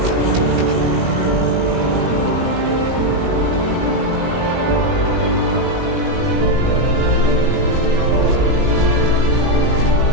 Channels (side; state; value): left; late; 18 ms